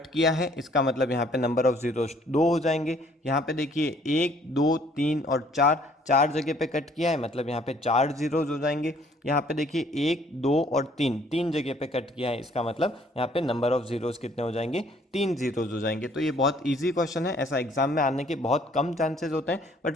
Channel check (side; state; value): both; normal; correlation 0.60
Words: किया है। इसका मतलब यहाँ पे नंबर ऑफ जीरोज 2 हो जाएंगे। यहाँ पे देखिए 1 2 3 और 4 जगह पे कट किया है, मतलब यहाँ पे 4 जीरोज हो जाएंगे। यहाँ पे देखिए 1 2 और 3 जगह पे कट किया है, इसका मतलब यहाँ पे नंबर ऑफ जीरोज कितने हो जाएंगे, 3 जीरोज हो जाएंगे। तो ये बहुत इजी क्वेश्चन है, ऐसा एग्जाम में आने के बहुत कम चांसेस होते हैं, बट